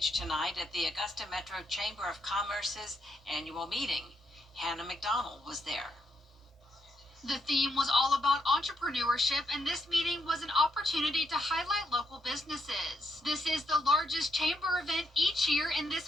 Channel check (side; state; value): both; normal; correlation 0.79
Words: tonight at the Augusta Metro Chamber of Commerce's annual meeting. Hannah McDonald was there. The theme was all about entrepreneurship, and this meeting was an opportunity to highlight local businesses. This is the largest chamber event each year, and